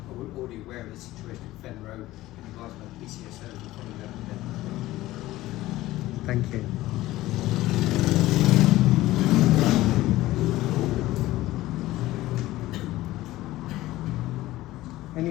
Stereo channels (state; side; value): quieter; right; 16.7 dB